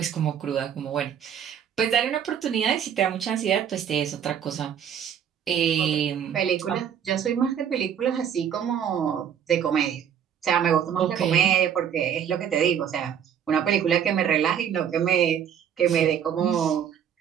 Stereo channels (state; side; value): quieter; left; 8.7 dB